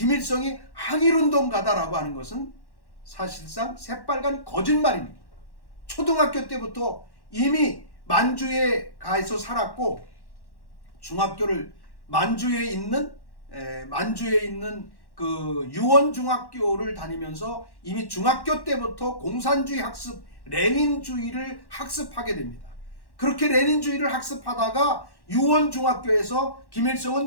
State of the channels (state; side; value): late; right; 1.1 ms